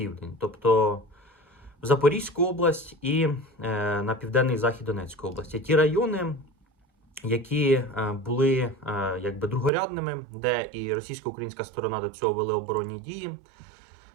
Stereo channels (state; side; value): drops out; left; at 9.7 s